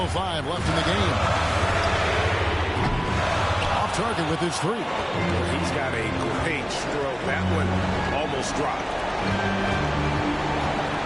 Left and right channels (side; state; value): both; identical; correlation 1.00